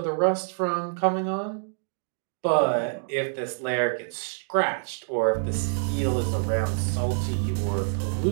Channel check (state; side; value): silent; left; digital silence